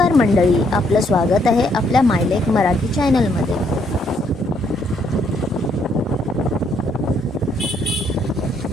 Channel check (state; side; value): normal; both; correlation 0.71